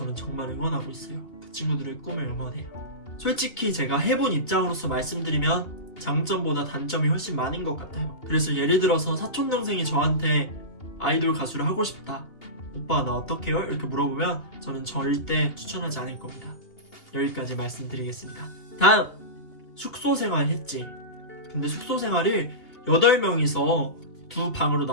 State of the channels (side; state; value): right; late; 2.8 ms